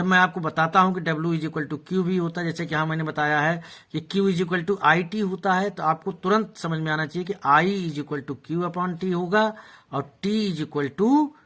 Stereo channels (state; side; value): identical; both; correlation 1.00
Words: मैं आपको बताता हूं कि W is equal to QV होता है, जैसे कि हाँ मैंने बताया है कि Q is equal to IT होता है, तो आपको तुरंत समझ में आना चाहिए कि I is equal to Q upon T होगा और T is equal to